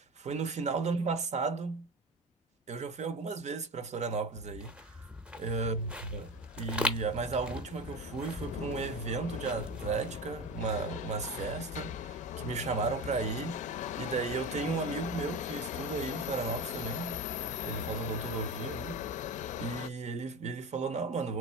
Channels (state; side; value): normal; both; correlation 0.27